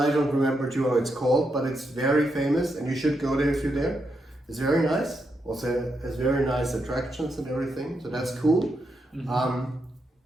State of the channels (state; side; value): normal; both; correlation 0.83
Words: I don't remember too how it's called. But it's very famous, and you should go there if you're there. It's very nice. Also, has very nice attractions and everything. So that's cool. Mm-hmm.